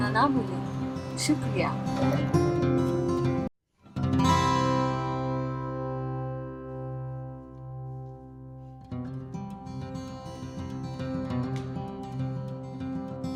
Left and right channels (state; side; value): identical; both; correlation 1.00